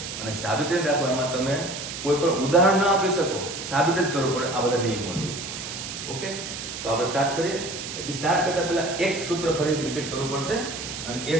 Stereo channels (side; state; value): right; noise; hiss, 8 dB below the sound